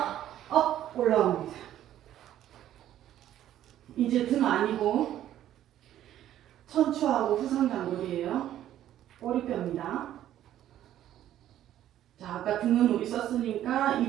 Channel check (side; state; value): left; quieter; 12.0 dB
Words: 업 올라옵니다. 이제 등 아니고 천추하고 후상단골이에요. 꼬리뼈입니다. 자, 아까 등은 우리 썼으니까